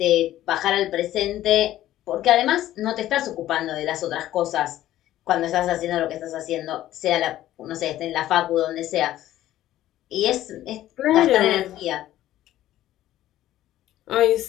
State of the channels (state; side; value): quieter; right; 13.7 dB